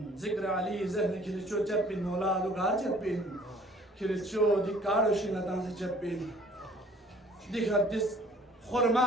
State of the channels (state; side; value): normal; both; correlation 0.54